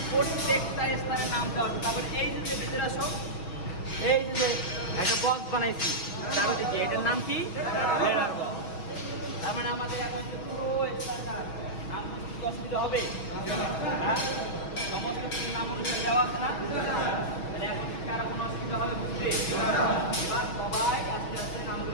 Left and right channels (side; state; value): right; late; 6.2 ms